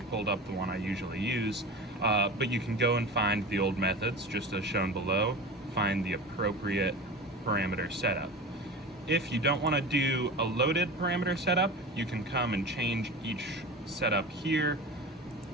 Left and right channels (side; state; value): both; normal; correlation 0.31